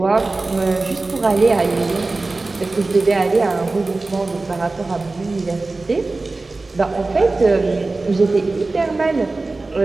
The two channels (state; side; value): quieter; left; 3.4 dB